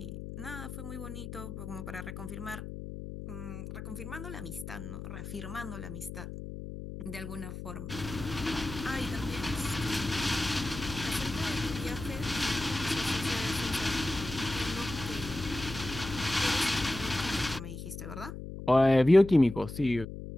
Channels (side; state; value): left; noise; hum, 9 dB below the sound